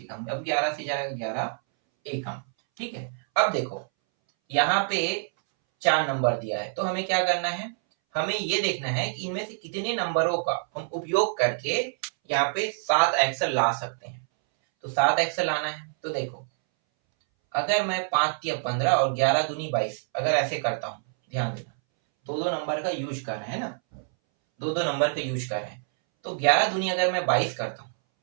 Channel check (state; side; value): silent; left; 60 dB below the other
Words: एकम, अब 11 से जाएगा, 11 एकम, ठीक है। अब देखो यहाँ पे 4 नंबर दिया है, तो हमें क्या करना है, हमें ये देखना है कि इनमें से कितने नंबरों का हम उपयोग करके यहाँ पे 7x ला सकते हैं। तो 7x लाना है, तो देखो अगर मैं 5 या 15 और 11 दूनी 22 अगर ऐसे करता हूँ, ध्यान देना, दो नंबर का यूज कर रहे हैं ना, दो नंबर का यूज कर रहे हैं, तो 11 दूनी अगर मैं 22 करता हूँ